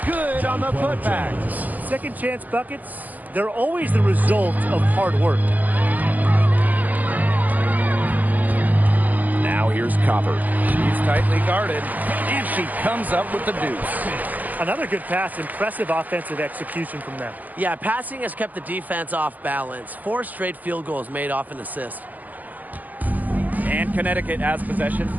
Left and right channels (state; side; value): late; left; 0.081 ms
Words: good on the putback. Second chance buckets, they're always the result of hard work. Now here's Copper. She's tightly guarded, and she comes up with the deuce. Another good pass. Impressive offensive execution from them. Yeah, passing has kept the defense off balance. 4 straight field goals made off an assist. And Connecticut has possession.